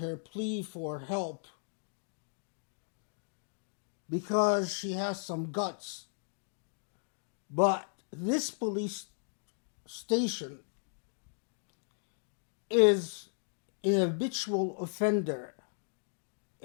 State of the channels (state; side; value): silent; right; digital silence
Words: her plea for help because she has some guts. But this police station is an habitual offender